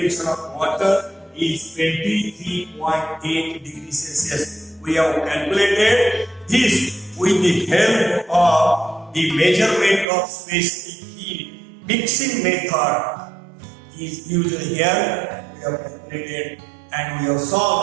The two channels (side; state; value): left; drops out; at 10.1 s